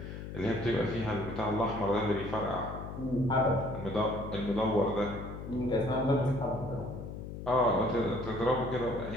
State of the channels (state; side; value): noise; left; hum, 9 dB below the sound